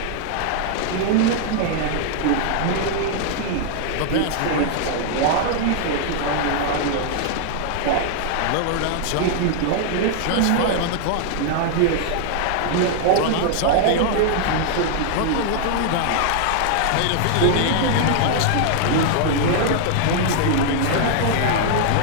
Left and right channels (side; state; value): both; different; correlation -0.01